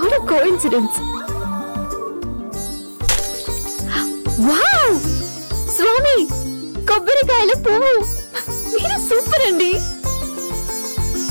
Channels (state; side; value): inverted; both; correlation -1.00